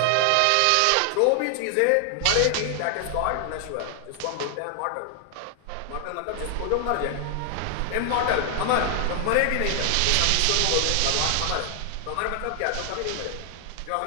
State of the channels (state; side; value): different; both; correlation 0.00